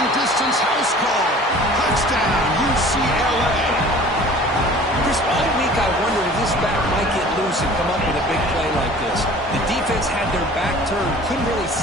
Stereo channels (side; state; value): both; normal; correlation 0.46